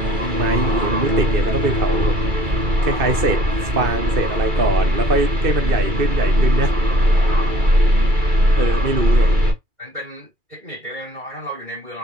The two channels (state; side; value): late; left; 2.3 ms